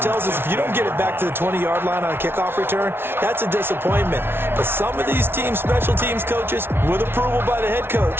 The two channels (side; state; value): left; late; 0.11 ms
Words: tells us if you don't get it back to the 20-yard line on a kickoff return, that's a disappointment. But some of these teams, special teams coaches, with approval by the head